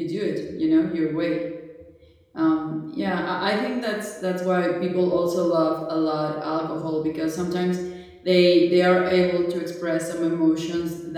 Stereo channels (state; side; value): identical; both; correlation 1.00